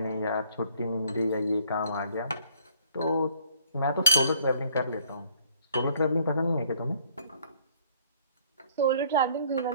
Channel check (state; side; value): inverted; both; correlation -0.60